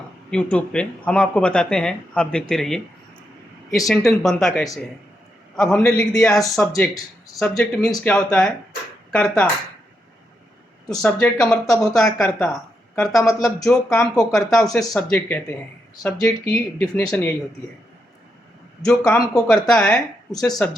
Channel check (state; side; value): normal; both; correlation 0.82